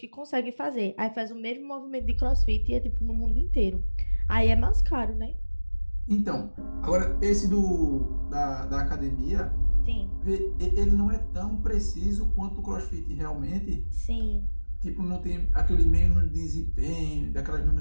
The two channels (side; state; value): both; inverted; correlation -1.00